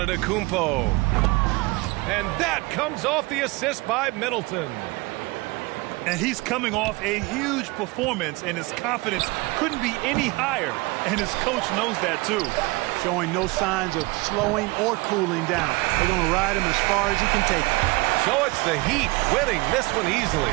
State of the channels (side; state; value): left; quieter; 23.9 dB